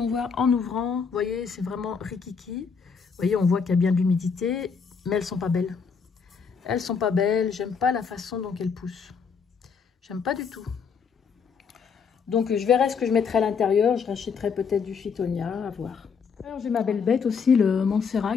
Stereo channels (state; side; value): quieter; right; 5.9 dB